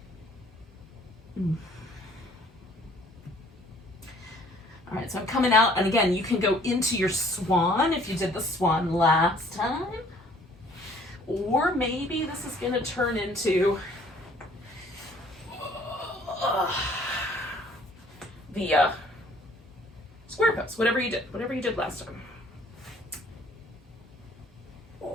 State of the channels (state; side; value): normal; both; correlation 0.57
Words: All right, so I'm coming out, and again, you can go into your swan if you did the swan last time. Or maybe this is going to turn into the square pose, whatever you did last time.